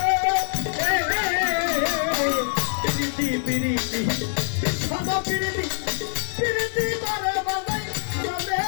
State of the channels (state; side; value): silent; right; 62 dB below the other